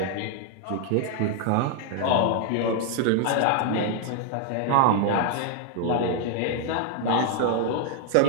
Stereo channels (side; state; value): both; different; correlation 0.00